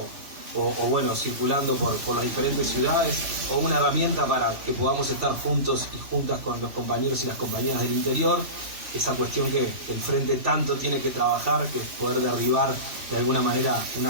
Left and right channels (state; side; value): late; left; 3.0 ms